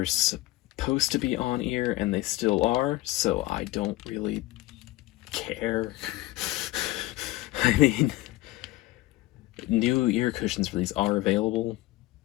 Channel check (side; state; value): right; quieter; 18.1 dB